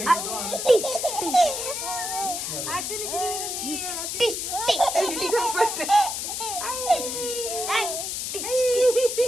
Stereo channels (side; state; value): left; noise; hiss, 3 dB below the sound